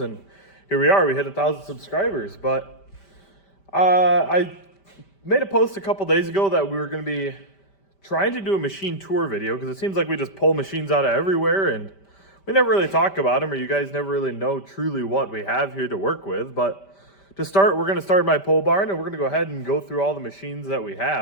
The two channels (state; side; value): late; right; 5.1 ms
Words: here we are. We hit 1,000 subscribers. But I made a post a couple days ago that we were going to be trying to do a machine tour video because it seems like we just pull machines out of everywhere and we never really talk about them, or you guys never really know truly what we have here to work with. But to start, we're going to start my pole barn, and we're going to go ahead and go through all the machines that we